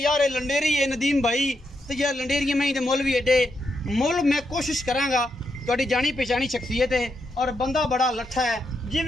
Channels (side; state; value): both; normal; correlation 0.82